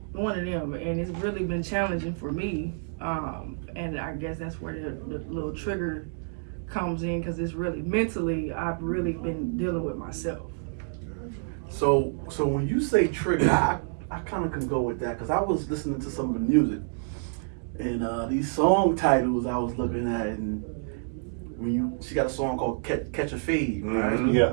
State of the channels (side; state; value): left; silent; digital silence